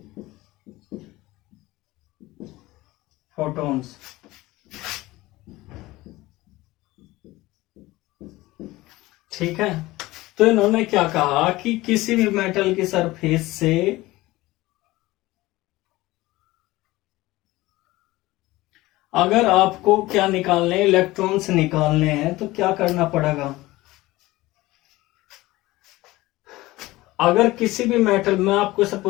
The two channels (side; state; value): right; quieter; 18.9 dB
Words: photons। ठीक है, तो इन्होंने क्या कहा कि किसी भी मेटल की सरफेस से अगर आपको क्या निकालने, इलेक्ट्रॉन्स निकालने हैं, तो क्या करना पड़ेगा? अगर किसी भी मेटल में, आपको इसे